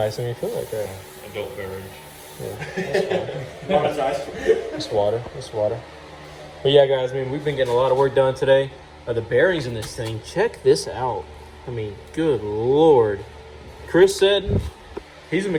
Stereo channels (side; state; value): both; identical; correlation 1.00